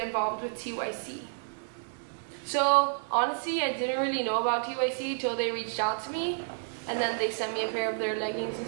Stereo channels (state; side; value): silent; left; 58 dB below the other